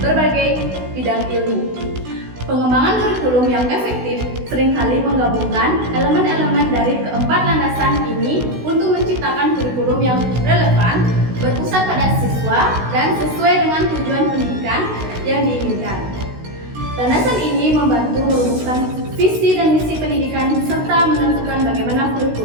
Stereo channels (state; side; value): late; left; 16 ms